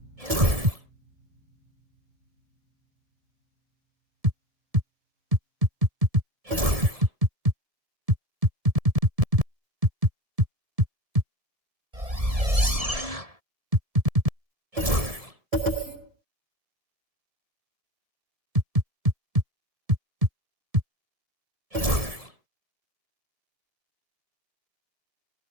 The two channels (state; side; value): late; left; 1.7 ms